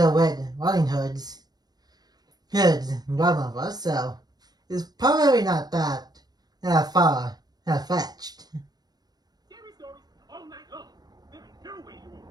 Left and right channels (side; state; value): left; late; 0.19 ms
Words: Red Riding Hood's grandmother, so it's probably not that far fetched.